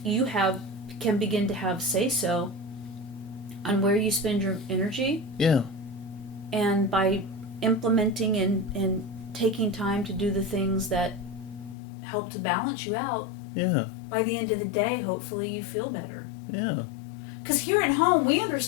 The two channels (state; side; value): drops out; right; at 11.8 s